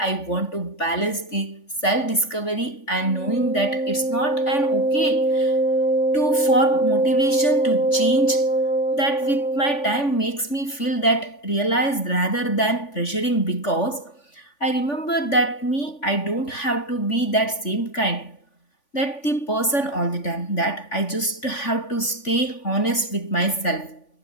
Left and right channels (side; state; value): right; late; 3.5 ms